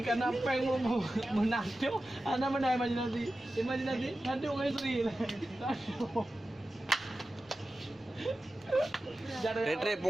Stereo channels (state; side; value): normal; both; correlation 0.94